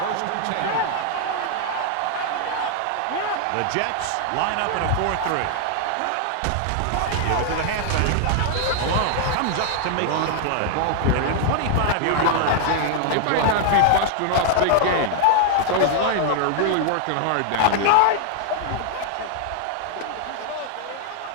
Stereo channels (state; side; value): different; both; correlation 0.00